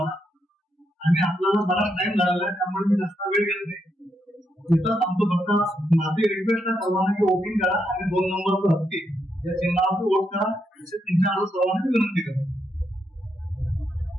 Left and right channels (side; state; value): both; normal; correlation 0.80